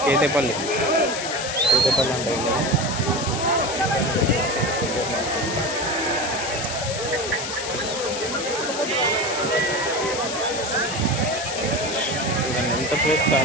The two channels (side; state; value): left; noise; hiss, 5 dB below the sound